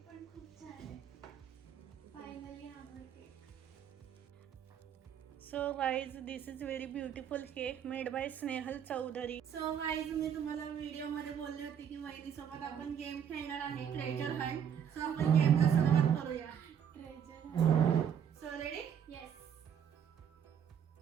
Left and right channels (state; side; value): quieter; left; 8.4 dB